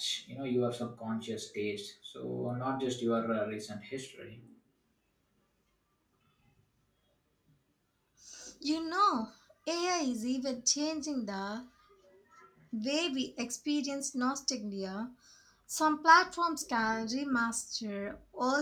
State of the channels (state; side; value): identical; both; correlation 1.00